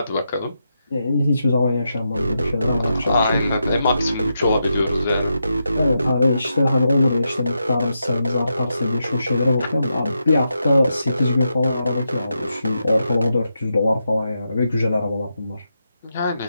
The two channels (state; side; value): inverted; both; correlation -0.85